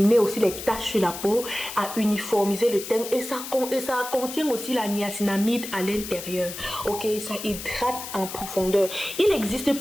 aussi les taches sur la peau, à uniformiser le teint et ça contient aussi la niacinamide à l'intérieur. Ok, ça hydrate en profondeur. Il existe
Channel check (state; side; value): noise; left; hiss, 9 dB below the sound